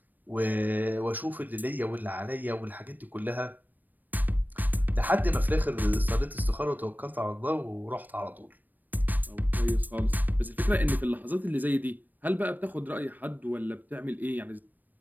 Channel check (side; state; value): left; late; 0.088 ms